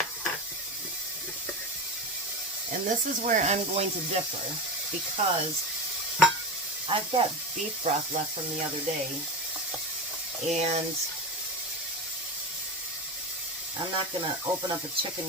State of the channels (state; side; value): normal; both; correlation 0.22